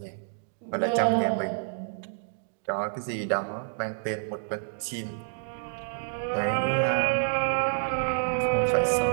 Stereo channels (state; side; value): silent; left; digital silence